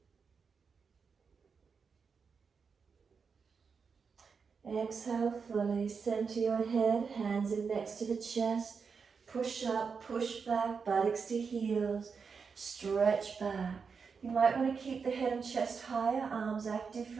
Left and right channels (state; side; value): quieter; left; 5.6 dB